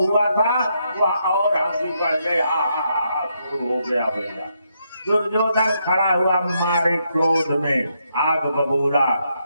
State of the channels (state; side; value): inverted; both; correlation -0.78